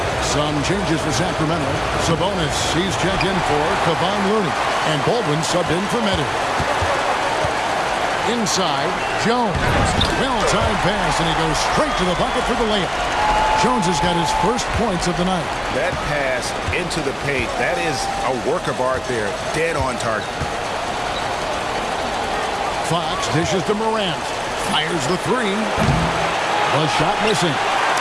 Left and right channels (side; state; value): both; identical; correlation 1.00